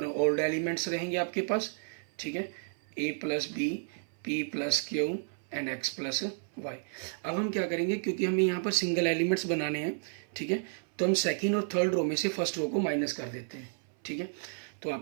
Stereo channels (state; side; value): silent; left; 57 dB below the other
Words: एलिमेंट्स रहेंगे आपके पास, ठीक है, a plus b, p plus q and x plus Y. अब हम क्या करेंगे, क्योंकि हमें यहाँ पर सिंगल एलिमेंट्स बनाने हैं, ठीक है, तो हम सेकेंड और थर्ड रो में से फर्स्ट रो को माइनस कर देते हैं, ठीक है। तो